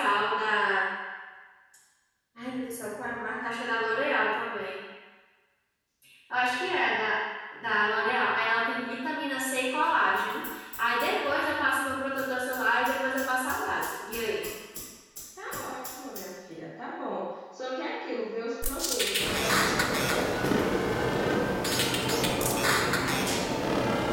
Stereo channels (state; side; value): identical; both; correlation 1.00